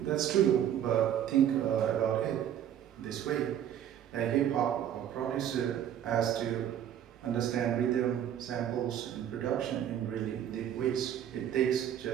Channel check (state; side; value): quieter; left; 10.2 dB